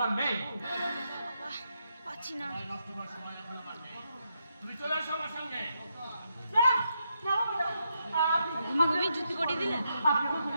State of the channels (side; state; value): both; inverted; correlation -0.81